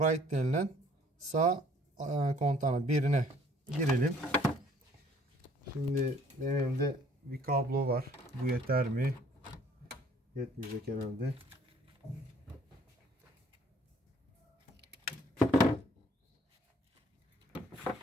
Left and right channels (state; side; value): normal; both; correlation 0.58